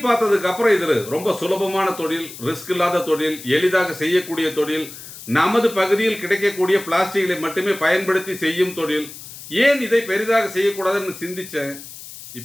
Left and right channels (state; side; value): noise; left; hiss, 14 dB below the sound